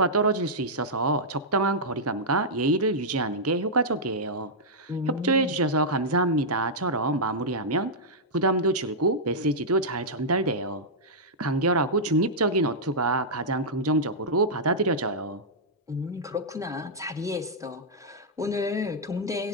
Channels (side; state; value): both; normal; correlation -0.09